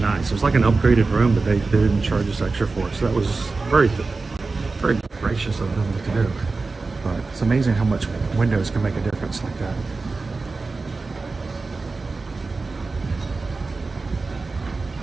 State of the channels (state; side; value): quieter; left; 3.9 dB